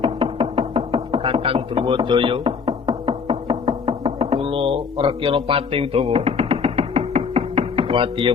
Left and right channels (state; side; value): quieter; right; 5.8 dB